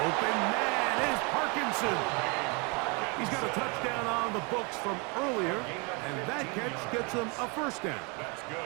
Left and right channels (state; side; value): quieter; left; 31.5 dB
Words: Open man is Parkinson. He's got a touchdown on the books from earlier, and that catch gets him a 1st down.